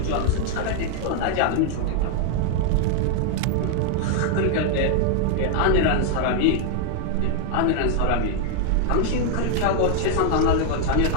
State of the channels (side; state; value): both; different; correlation 0.00